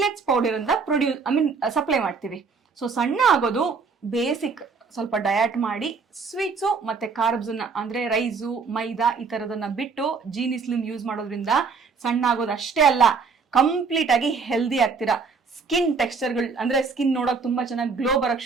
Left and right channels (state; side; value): quieter; left; 5.0 dB